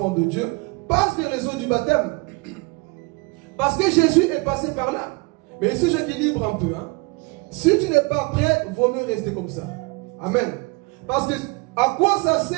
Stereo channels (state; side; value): quieter; left; 27.5 dB